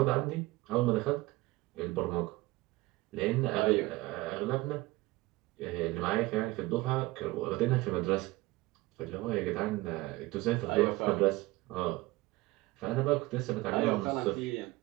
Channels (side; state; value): left; quieter; 20.2 dB